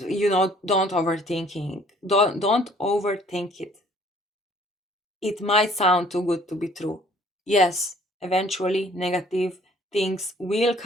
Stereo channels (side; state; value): both; normal; correlation 0.57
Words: Don't overthink it. It might sound too good to be true. Yes, eventually negative things will